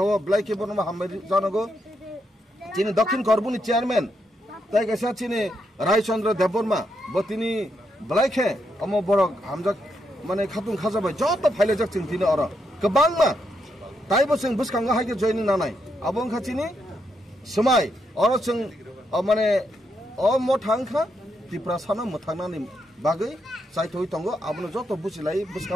ब्लाइके बरनमा हामबाय जानांगौ चिनि दक्षिण करबुनि चेयरमैन ताइ कैसा चिनि रायचंद्र देबबर्मा बतिनि ब्लाइके अम बरक हामजाक माने खातुं खाजाबाय जत फाइलेजाक जों तिनि अर गोबांमा ताइबो जों बुसखांगा हायके जॉइनिं नानाय आबों खाथिनि समाय अर जों माने अ मथांखा त्रिपुरा सानो मथांनानि बागै साइथoi तंगो आबनो जत बुसिलाय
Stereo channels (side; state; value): both; normal; correlation 0.80